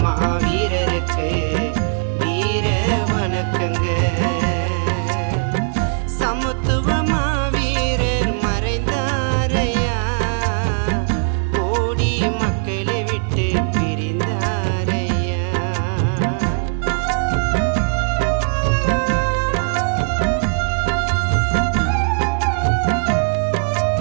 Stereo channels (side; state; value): left; silent; 58 dB below the other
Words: மாவீரருக்கு வீர வணக்கங்க. சமத்துவ மாவீரர் மறைந்தாரையா, கோடி மக்களை விட்டு பிரிந்தாரையா.